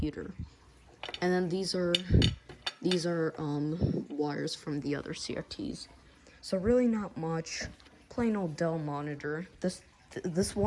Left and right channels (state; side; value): identical; both; correlation 1.00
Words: And then these are wires from the other CRTs. So really not much. Plain old Dell monitor. This